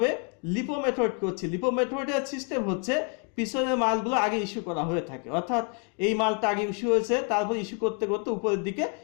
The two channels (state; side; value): quieter; right; 38.6 dB